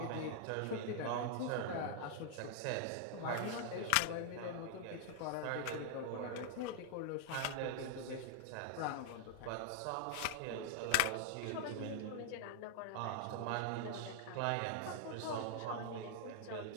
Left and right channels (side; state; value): both; different; correlation 0.00